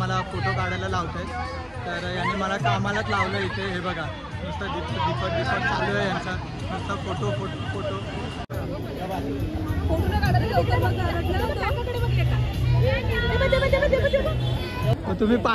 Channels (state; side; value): identical; both; correlation 1.00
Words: फोटो काढायला लावत आहेत. तर यांनी मला कामालाच लावलं इथे. हे बघा नुसतं दीपक चालू आहे यांचा, नुसतं फोटो. तुम्ही